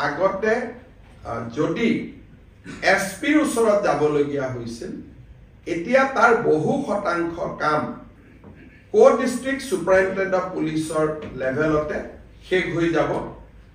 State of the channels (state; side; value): identical; both; correlation 1.00